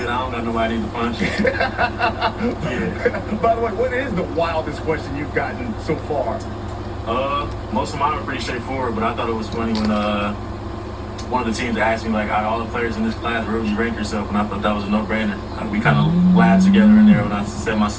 I don't got nobody to punch. Yeah. By the way, what is the wildest question you've gotten so far? Most of mine were pretty straightforward, but I thought it was funny when one of the teams asked me, like, out of all the players in this class, where would you rank yourself? And I thought that was a no-brainer. We kind of laughed together in there when I said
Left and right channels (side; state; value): both; identical; correlation 1.00